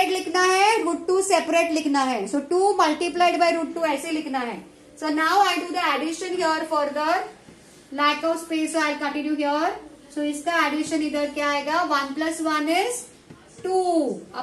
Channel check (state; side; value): identical; both; correlation 1.00